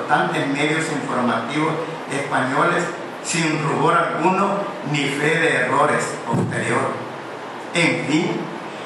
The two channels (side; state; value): both; identical; correlation 1.00